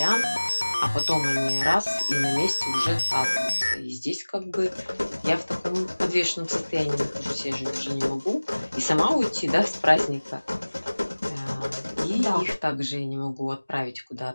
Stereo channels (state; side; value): inverted; both; correlation -1.00